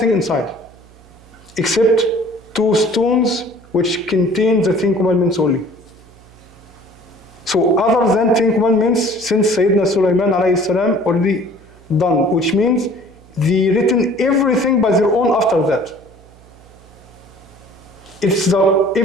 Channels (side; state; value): right; noise; hum, 25 dB below the sound